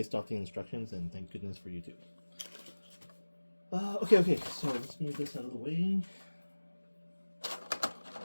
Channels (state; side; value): inverted; both; correlation -1.00